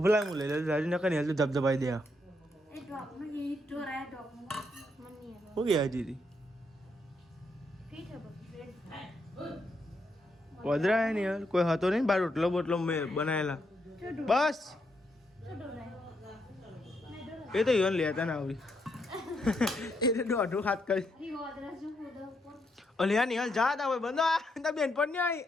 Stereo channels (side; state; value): both; normal; correlation 0.78